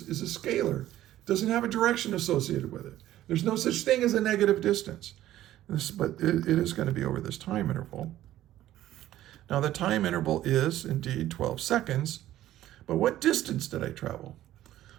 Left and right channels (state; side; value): quieter; left; 13.7 dB